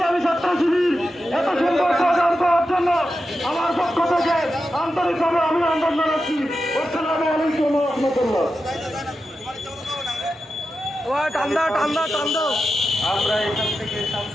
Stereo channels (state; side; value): normal; both; correlation 0.90